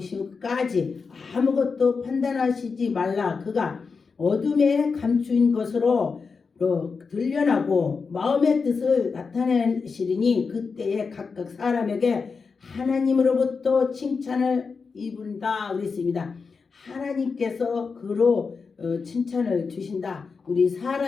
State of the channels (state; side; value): quieter; right; 5.0 dB